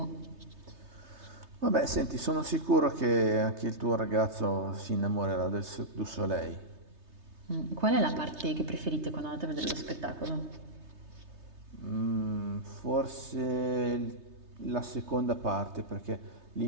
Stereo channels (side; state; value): left; late; 3.3 ms